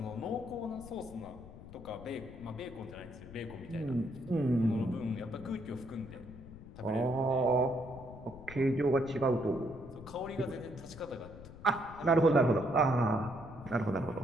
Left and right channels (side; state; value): left; noise; rumble, 15 dB below the sound